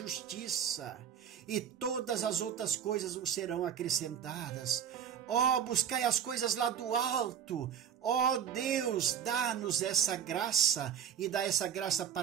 e todas as outras coisas vos serão acrescentadas. Ó, buscai as coisas lá do alto. Ó Deus, dá-nos essa graça e dá essa graça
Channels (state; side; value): quieter; left; 8.6 dB